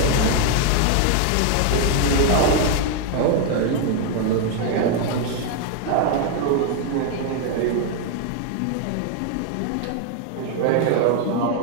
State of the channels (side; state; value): both; different; correlation 0.00